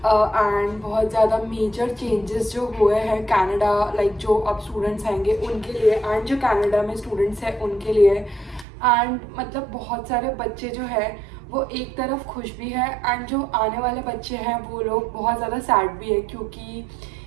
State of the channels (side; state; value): left; drops out; at 8.7 s